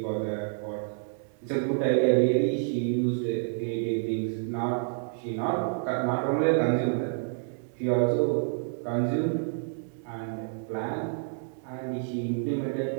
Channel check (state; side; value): silent; left; digital silence